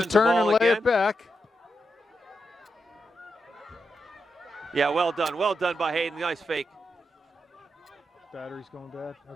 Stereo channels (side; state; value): both; normal; correlation 0.85